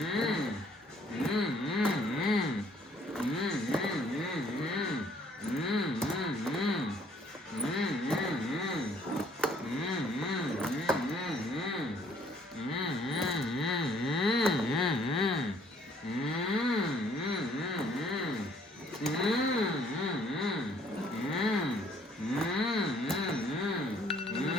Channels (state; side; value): normal; both; correlation 0.61